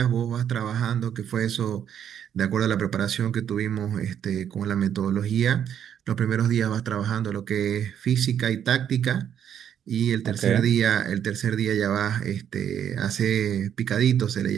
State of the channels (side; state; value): left; quieter; 9.2 dB